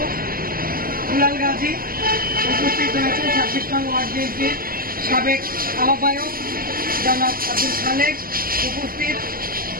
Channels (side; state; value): left; late; 0.42 ms